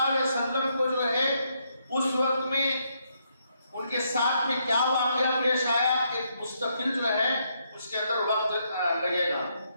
علیہ وسلم کو جو ہے اس وقت میں ان کے ساتھ میں کیا واقعہ پیش آیا، ایک مستقل جو ہے اس کے اندر وقت لگے گا.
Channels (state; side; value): inverted; both; correlation -0.76